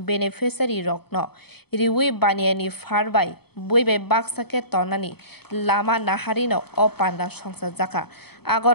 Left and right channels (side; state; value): right; late; 0.97 ms